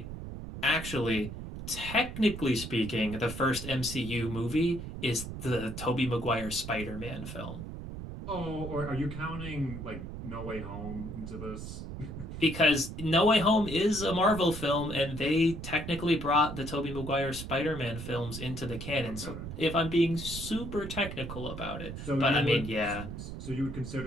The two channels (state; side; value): noise; right; rumble, 8 dB below the sound